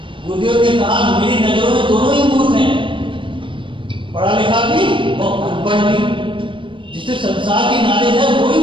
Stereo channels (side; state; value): left; late; 0.24 ms